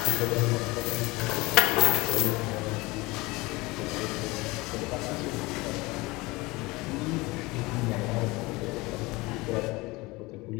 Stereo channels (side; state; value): right; quieter; 22.6 dB